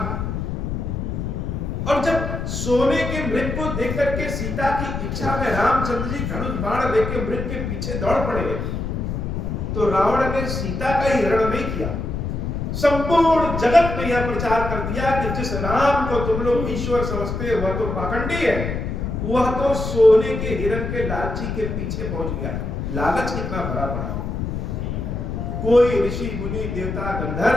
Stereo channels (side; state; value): left; noise; rumble, 3 dB below the sound